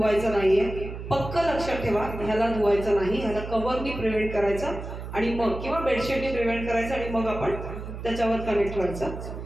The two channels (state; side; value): noise; right; hum, 9 dB below the sound